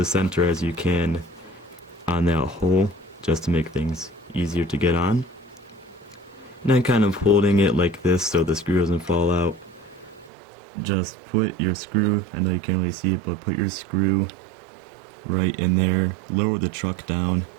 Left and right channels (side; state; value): left; drops out; at 10.3 s